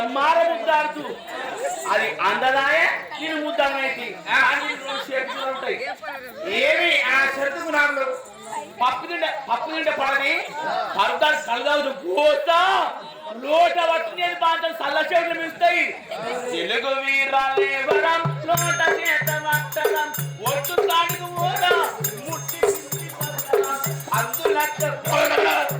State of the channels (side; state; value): both; identical; correlation 1.00